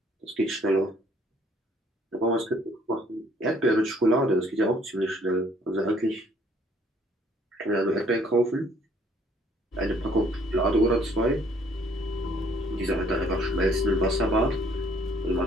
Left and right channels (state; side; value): normal; both; correlation 0.62